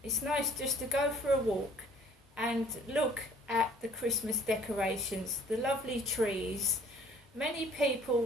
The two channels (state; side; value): normal; both; correlation 0.50